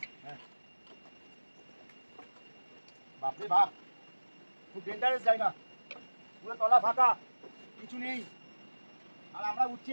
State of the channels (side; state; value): both; inverted; correlation -1.00